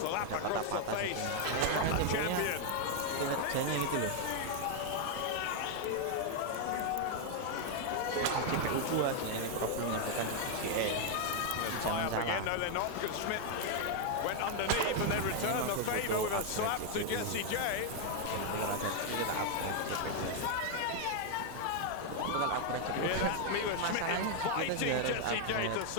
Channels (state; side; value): different; both; correlation 0.00